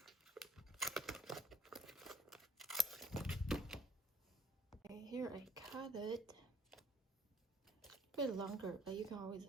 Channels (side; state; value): both; normal; correlation 0.61